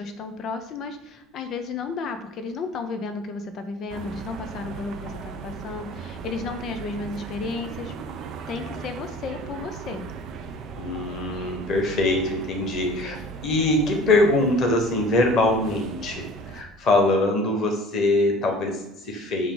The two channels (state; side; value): normal; both; correlation 0.46